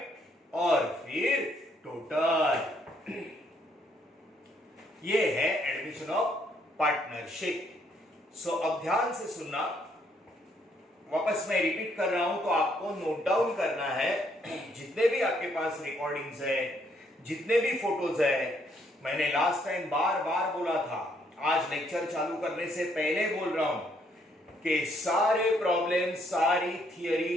और फिर टोटल। ये है एडमिशन ऑफ पार्टनरशिप। सो अब ध्यान से सुनना, वापस मैं रिपीट कर रहा हूं तो आपको नोट डाउन करना है। जितने भी आपके पास रिकॉर्डिंग्स है, जितने भी फोटोज है, मैंने लास्ट टाइम बार बार बोला था, आज लेक्चर चालू करने से पहले बोल रहा हूं कि सारे प्रॉब्लम, सारी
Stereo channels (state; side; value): normal; both; correlation 0.70